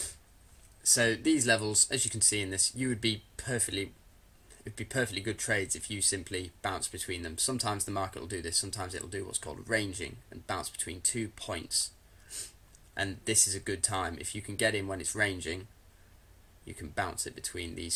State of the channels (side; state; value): both; identical; correlation 1.00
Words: So these levels, as you can see in this, it'd be perfectly good trades if you simply bounce between them. Sometimes the market will do this. Sometimes it'll do what's called ranging and bounce between 2 points. And this is a good time. If you can get in when it's ranging, you can bounce it between